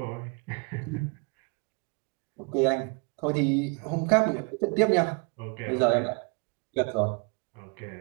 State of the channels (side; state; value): left; quieter; 32.9 dB